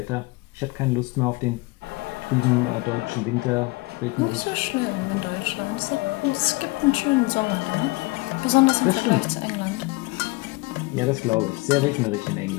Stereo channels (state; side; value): quieter; right; 24.3 dB